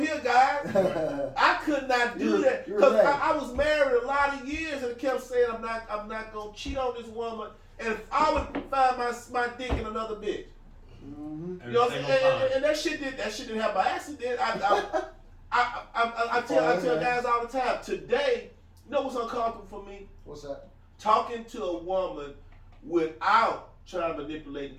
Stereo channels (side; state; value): both; identical; correlation 1.00